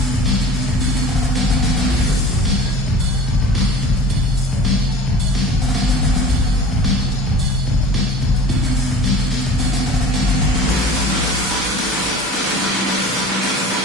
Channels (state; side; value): normal; both; correlation 0.42